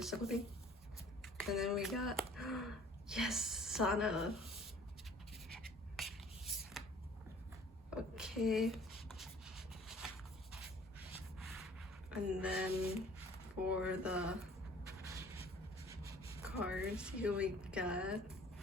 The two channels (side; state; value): both; normal; correlation 0.52